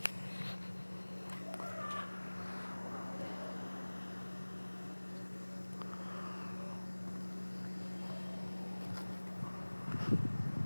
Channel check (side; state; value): both; inverted; correlation -1.00